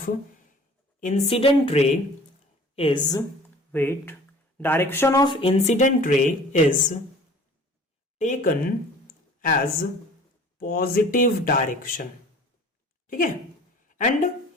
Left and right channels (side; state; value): both; normal; correlation 0.47